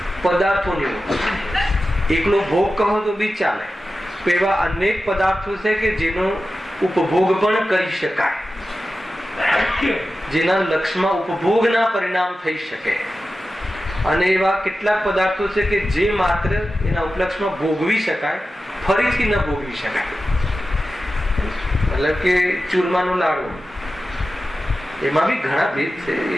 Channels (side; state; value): both; normal; correlation 0.93